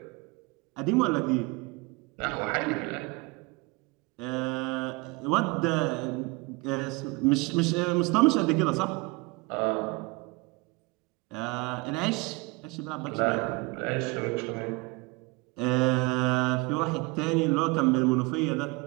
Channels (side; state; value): left; quieter; 26.3 dB